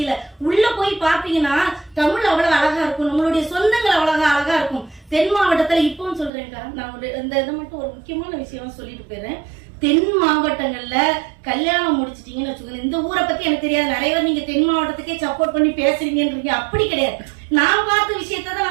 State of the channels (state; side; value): drops out; left; at 6.3 s